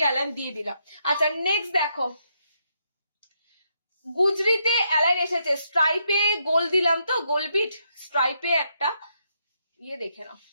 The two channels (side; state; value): both; inverted; correlation -0.78